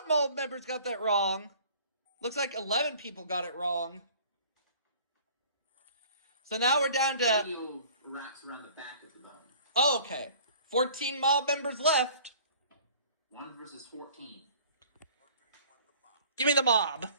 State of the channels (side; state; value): both; inverted; correlation -0.50